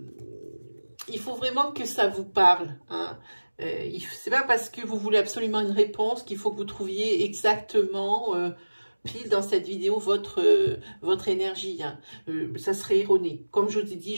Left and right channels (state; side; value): inverted; both; correlation -1.00